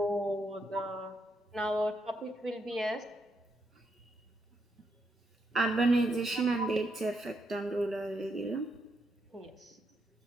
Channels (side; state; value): both; normal; correlation 0.79